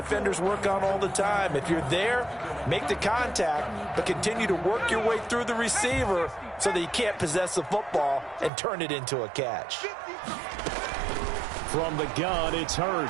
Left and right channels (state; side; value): drops out; left; at 8.5 s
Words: work on all the time. If you're there, make the contact, but continue to work your way through the receiver so that you can't possess the football and turn it into a catch. From the gun, it's